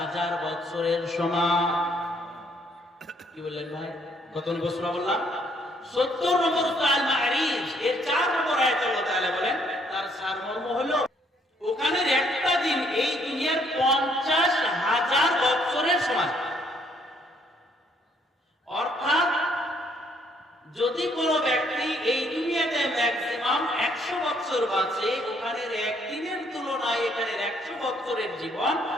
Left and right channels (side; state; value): both; normal; correlation 0.67